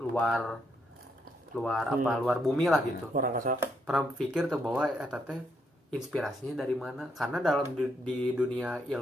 bumi lah gitu. Orang kasar. Pernah pikir tuh bahwa eta teh inspirasinya dari mana? Karena dalam di dunia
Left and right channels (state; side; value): normal; both; correlation 0.76